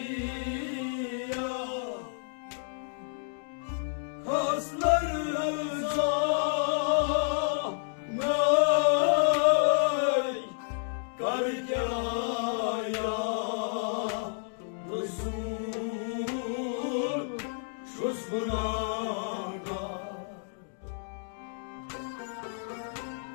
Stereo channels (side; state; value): right; silent; digital silence